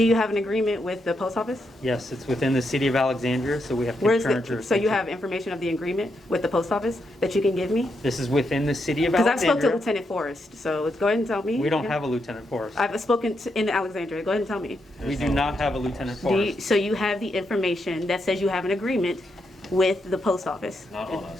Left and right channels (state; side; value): normal; both; correlation 0.82